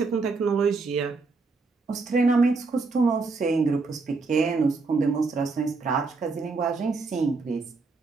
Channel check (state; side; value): quieter; left; 4.1 dB